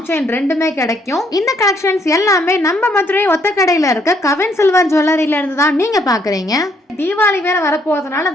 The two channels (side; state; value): both; normal; correlation 0.69